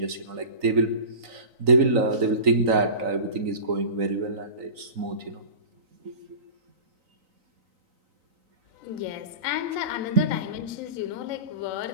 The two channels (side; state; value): left; late; 3.9 ms